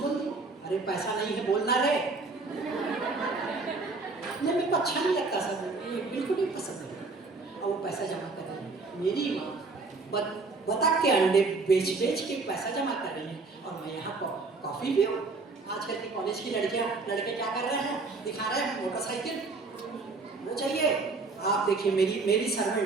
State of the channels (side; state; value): left; quieter; 3.8 dB